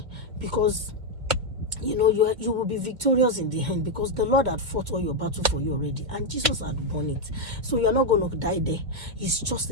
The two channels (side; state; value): left; late; 2.5 ms